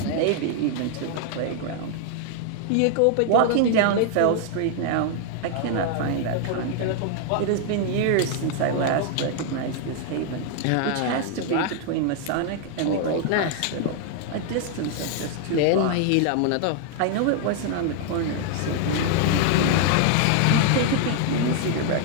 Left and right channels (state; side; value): different; both; correlation 0.00